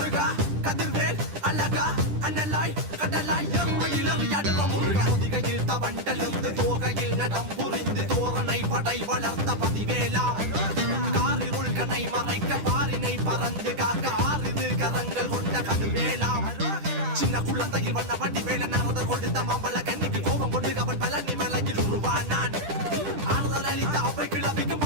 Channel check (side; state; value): left; late; 10 ms